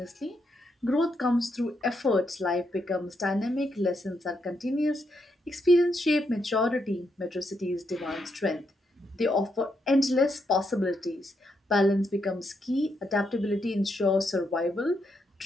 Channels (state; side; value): normal; both; correlation 0.80